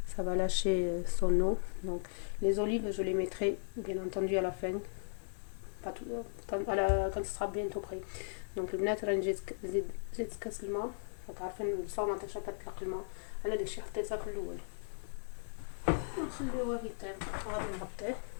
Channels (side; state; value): right; silent; 53 dB below the other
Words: ça va lâcher son eau. Donc les olives je les mettrai bien entendu à la fin, pas tout, quand ce sera bientôt prêt. Donc البنات راني زيت كاس الماء. عارفين الصومه تاع كتطلق الماء، انا داكشي حطيتها في الاول. نخليوه يطيب وغادي نغطيه